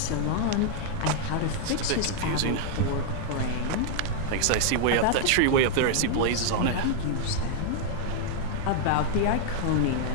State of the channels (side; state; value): both; different; correlation -0.01